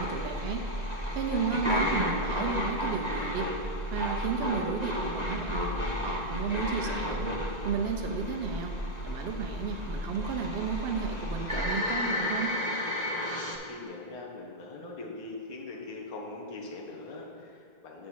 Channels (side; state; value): left; late; 1.9 ms